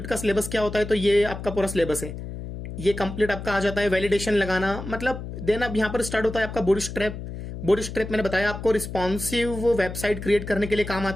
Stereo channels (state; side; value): noise; left; hum, 9 dB below the sound